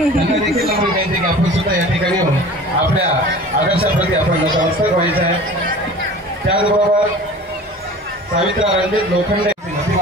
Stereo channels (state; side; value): normal; both; correlation 0.41